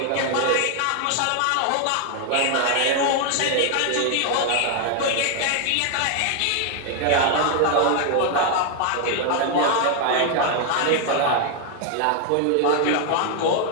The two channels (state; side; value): different; both; correlation 0.01